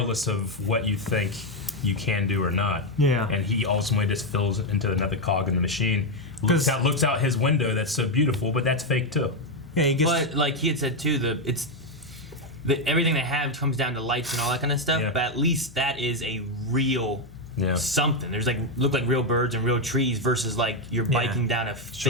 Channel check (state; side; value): normal; both; correlation 0.04